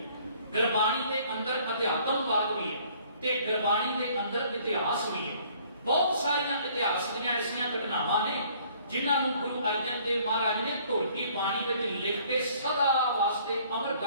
ਗੁਰਬਾਣੀ ਦੇ ਅੰਦਰ ਅਧਿਆਤਮਵਾਦ ਵੀ ਹੈ ਤੇ ਗੁਰਬਾਣੀ ਦੇ ਅੰਦਰ ਇਤਿਹਾਸ ਵੀ ਹੈ। ਬਹੁਤ ਸਾਰੀਆਂ ਇਤਿਹਾਸ ਦੀਆਂ ਐਸੀਆਂ ਘਟਨਾਵਾਂ ਨੇ ਜਿਨ੍ਹਾਂ ਨੂੰ ਗੁਰੂ ਅਰਜਨ ਦੇਵ ਮਹਾਰਾਜ ਨੇ ਢੋਲਕੀ ਬਾਣੀ ਵਿੱਚ ਲਿਖ ਕੇ ਸਦਾ ਵਾਸਤੇ ਅਮਰ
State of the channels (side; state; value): both; inverted; correlation -0.58